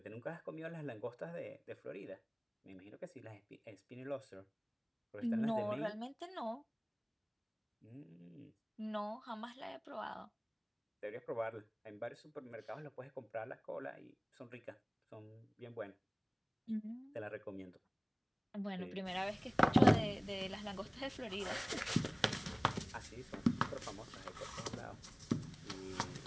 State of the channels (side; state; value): both; identical; correlation 1.00